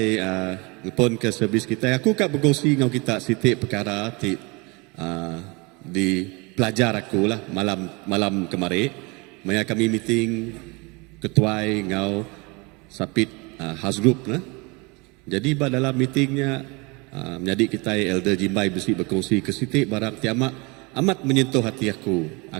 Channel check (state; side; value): quieter; left; 27.7 dB